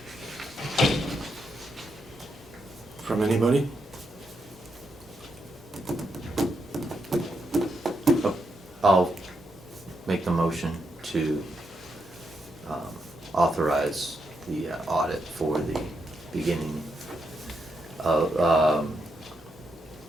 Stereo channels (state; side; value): normal; both; correlation 0.81